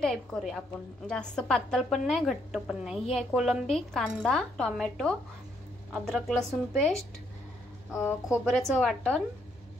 करूया आपण, जास्त पातळ पण नाही घट्ट पण नाही। ही आहे कोलंबी, कांदा, टोमॅटो, अद्रक लसूण पेस्ट, खोबऱ्याचं वाटण,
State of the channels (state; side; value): noise; left; hum, 28 dB below the sound